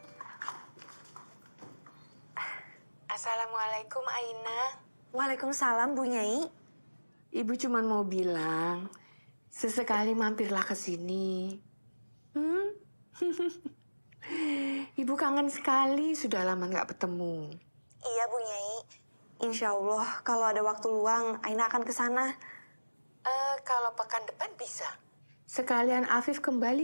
Assalamualaikum Aina. Waalaikumsalam Bu Nyai. Ibu cuma mau bilang, sesekali mampirlah ke sini. Ibu kangen sekali, sudah lama nggak bertemu. Iya Bu Nyai. Insya Allah kalau ada waktu luang, Aina akan ke sana. Kalau pekan depan bisa. Sekalian Afif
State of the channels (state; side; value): inverted; both; correlation -1.00